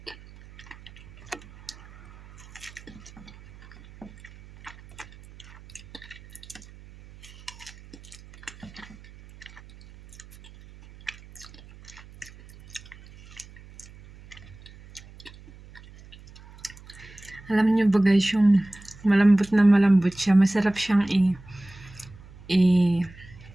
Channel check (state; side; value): noise; right; hum, 21 dB below the sound